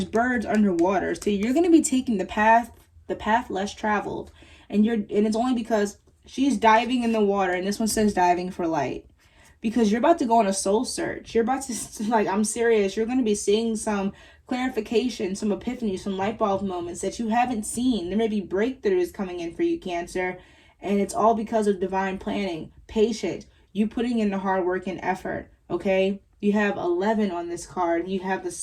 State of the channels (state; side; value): identical; both; correlation 1.00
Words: birds underwater, so you're going to be taking the path less traveled, and it's only because she's diving in the water, and this one says diving for light, because you're about to go on a soul search. You're about to, like, I'm serious, you're going to be seeing some clarification, some epiphany, some light bulb moments that you haven't seen. There may be breakthroughs coming in for you, Cancer, and it's all because of divine planning, patience, you putting in the hard work and effort, okay? You have 11 on this card. You have the